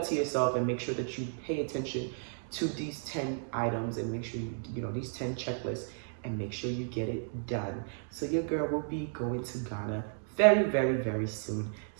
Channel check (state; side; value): silent; left; digital silence